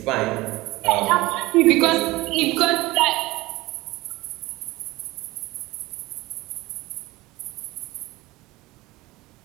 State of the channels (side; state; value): left; quieter; 19.8 dB